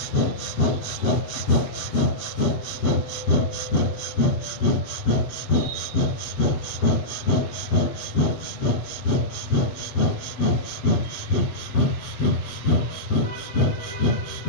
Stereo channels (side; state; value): right; late; 7.7 ms